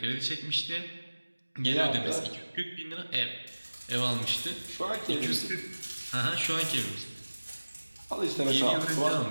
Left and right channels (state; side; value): inverted; both; correlation -1.00